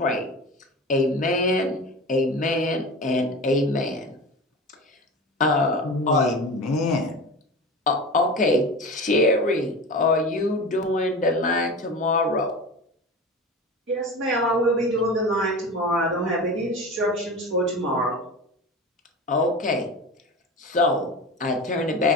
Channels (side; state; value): both; normal; correlation 0.31